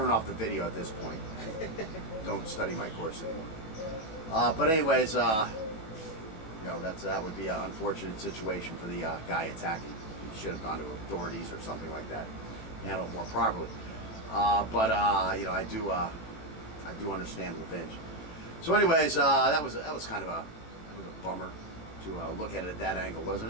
off the video at this point. Don't study my course anymore. But anyways, you know, that would be an unfortunate situation for the guy attacking. He should have gone to authorities or something like that, handle it more properly. But you know, I do understand revenge. So anyways, that was kind of a bummer to look at it at that angle,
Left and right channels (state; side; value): late; right; 18 ms